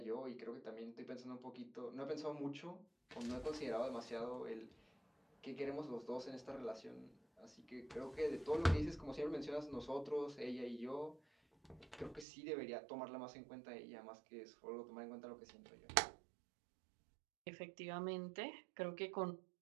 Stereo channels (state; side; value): drops out; left; at 12.2 s